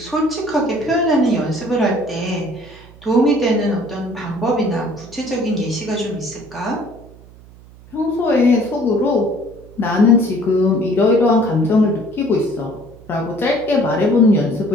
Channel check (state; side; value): noise; right; hum, 22 dB below the sound